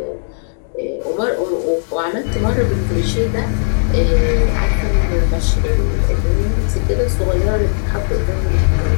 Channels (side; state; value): right; silent; digital silence